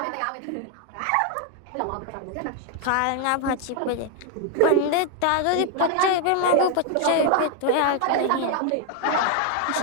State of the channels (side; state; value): both; different; correlation 0.00